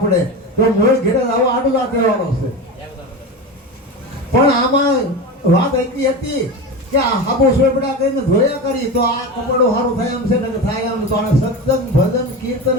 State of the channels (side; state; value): both; normal; correlation 0.24